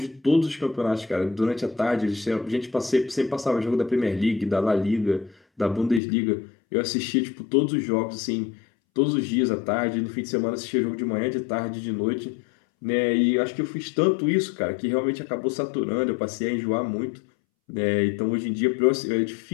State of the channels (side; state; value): right; drops out; at 6.0 s